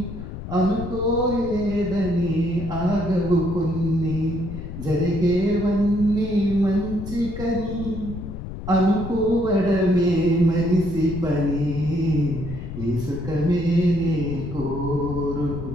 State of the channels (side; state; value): left; noise; rumble, 9 dB below the sound